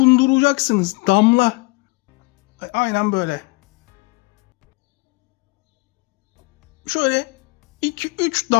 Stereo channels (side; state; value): right; quieter; 26.2 dB